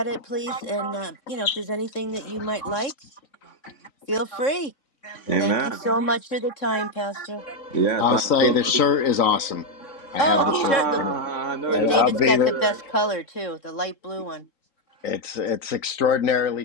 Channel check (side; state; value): right; late; 3.9 ms